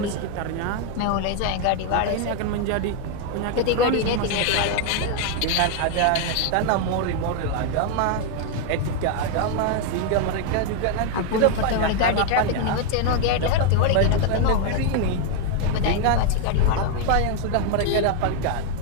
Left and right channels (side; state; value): both; different; correlation 0.01